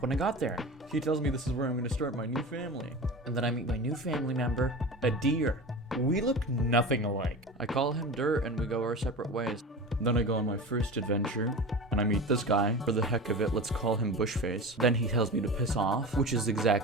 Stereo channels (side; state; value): both; normal; correlation 0.31